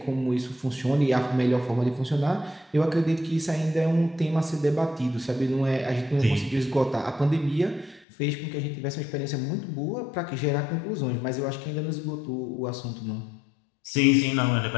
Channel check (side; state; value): right; drops out; at 8.1 s